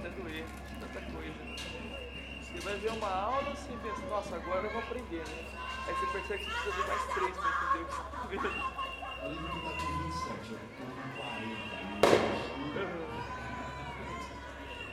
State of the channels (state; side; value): identical; both; correlation 1.00